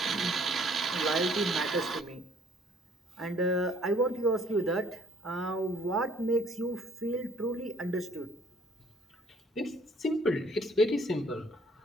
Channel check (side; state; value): both; normal; correlation 0.59